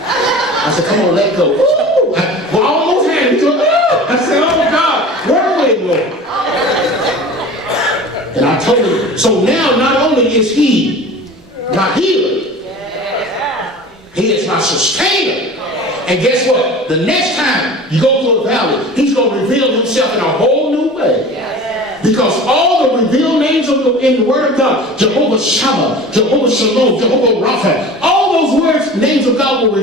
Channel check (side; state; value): both; normal; correlation 0.38